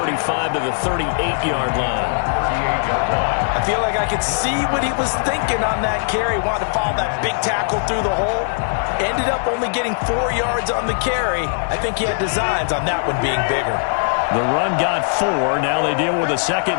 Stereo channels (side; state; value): right; silent; 66 dB below the other